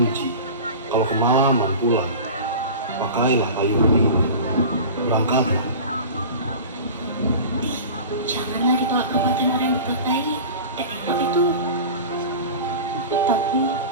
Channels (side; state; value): both; inverted; correlation -0.34